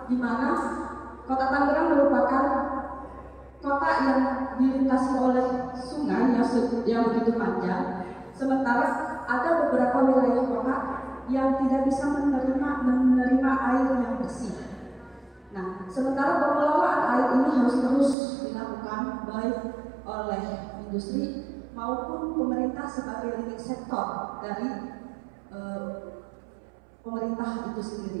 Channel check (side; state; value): left; drops out; at 18.2 s